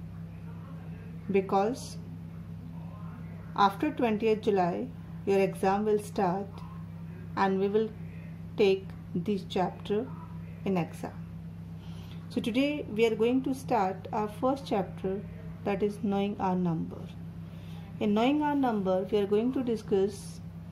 because after 20th July, your exam will start and we will take this chapter in exam. So today we are going to start our first chapter, that is Knowing Our Number. In Knowing Our Number, we are going to discuss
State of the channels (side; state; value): both; identical; correlation 1.00